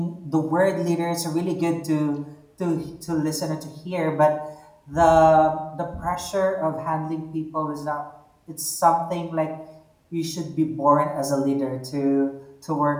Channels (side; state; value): both; identical; correlation 1.00